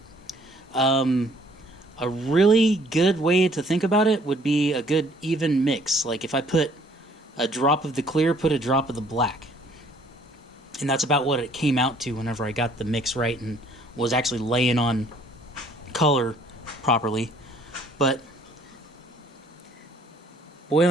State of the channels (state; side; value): normal; both; correlation 0.60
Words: A really good way to think about it would be a good even mix. Like if I put a drop of the clear, put a drop of the black. And that's about what it came out to whenever I got the mix right and was actually laying on color properly. But boy,